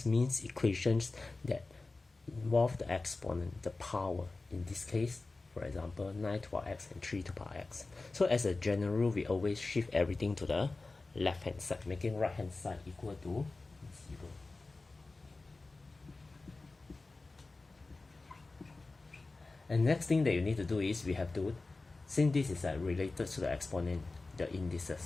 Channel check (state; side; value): quieter; right; 3.5 dB